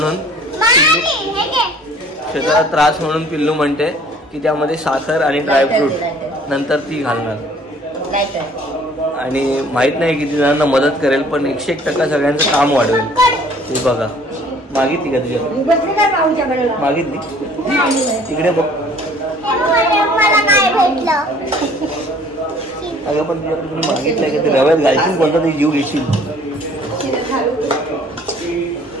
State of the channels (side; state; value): both; normal; correlation 0.54